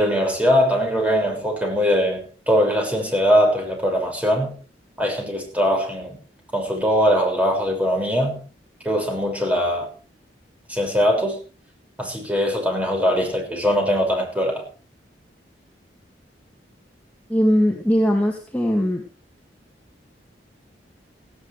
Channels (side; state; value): both; normal; correlation 0.71